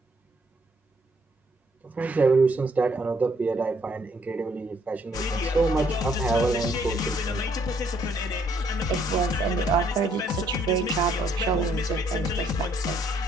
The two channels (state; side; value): normal; both; correlation 0.67